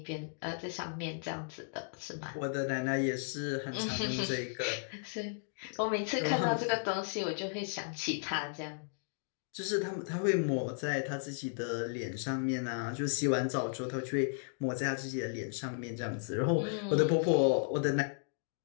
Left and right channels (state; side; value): silent; right; digital silence